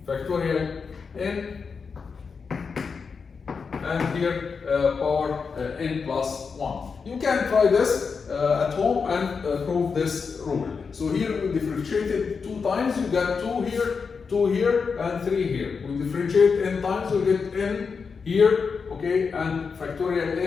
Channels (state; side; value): quieter; right; 5.4 dB